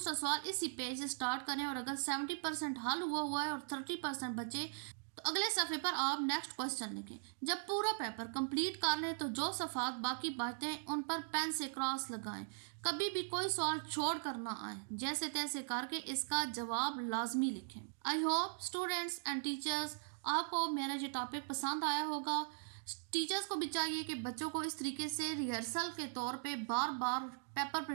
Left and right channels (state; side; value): silent; left; digital silence